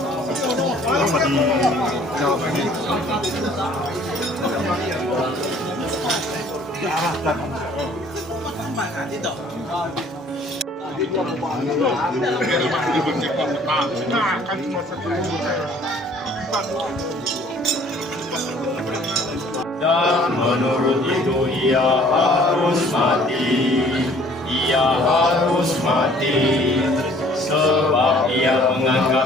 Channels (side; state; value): both; normal; correlation 0.56